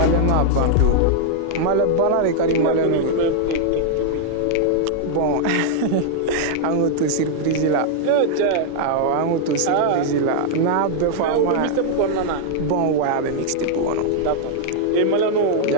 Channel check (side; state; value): both; different; correlation -0.01